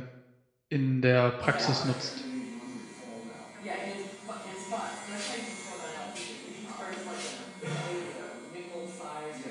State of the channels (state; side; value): identical; both; correlation 1.00